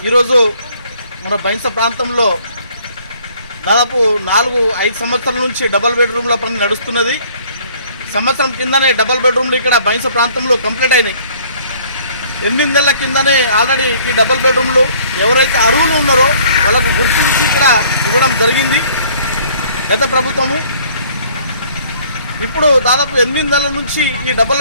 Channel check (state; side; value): inverted; both; correlation -0.57